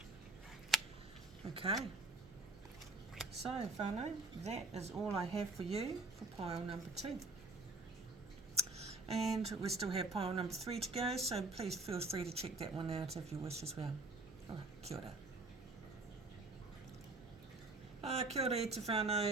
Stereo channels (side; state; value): left; quieter; 3.3 dB